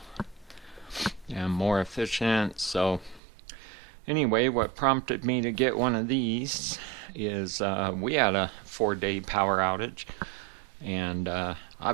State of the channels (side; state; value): left; drops out; at 3.2 s